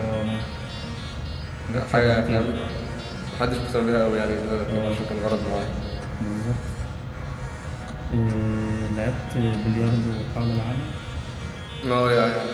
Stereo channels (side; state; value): both; identical; correlation 1.00